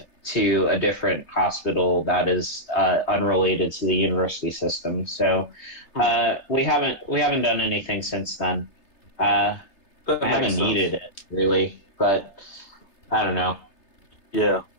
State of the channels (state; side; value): late; right; 3.3 ms